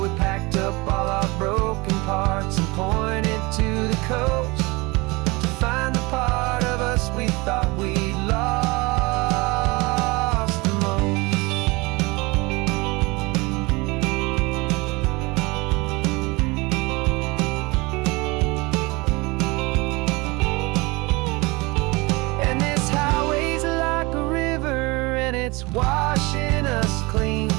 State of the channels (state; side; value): quieter; left; 24.6 dB